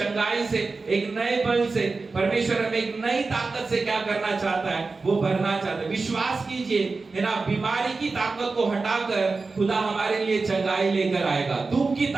से, एक नए बल से, परमेश्वर हमें एक नई ताकत से क्या करना चाहता है, वो भरना चाहता है। विश्वास कीजिए, है ना, बीमारी की ताकत को हटाकर खुदा हमारे लिए चंगाई लेकर आएगा। दुख की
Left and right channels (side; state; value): left; quieter; 4.0 dB